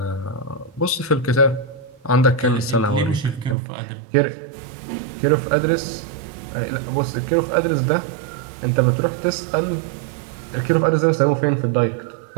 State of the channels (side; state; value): left; drops out; at 3.6 s